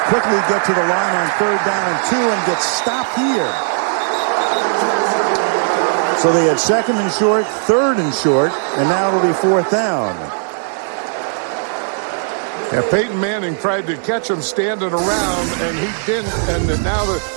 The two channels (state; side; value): silent; left; 68 dB below the other